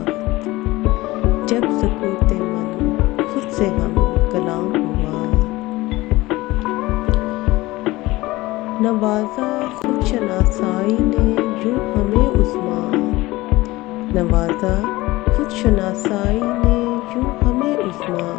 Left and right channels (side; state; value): right; quieter; 19.5 dB